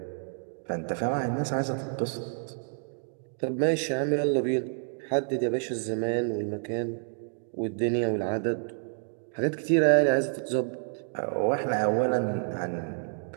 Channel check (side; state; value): left; silent; 59 dB below the other